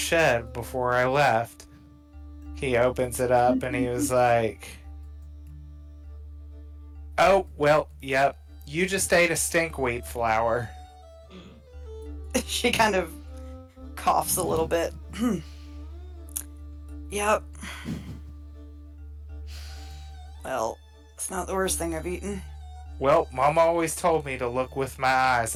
before I left. He opens it up and he was like, oh, well, yep, you just ate a stinkweed flower. She kind of coughs a little bit. Yep. Well, it's not the worst thing I've eaten. Well, Mom always told me to look with my eyes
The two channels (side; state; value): both; identical; correlation 1.00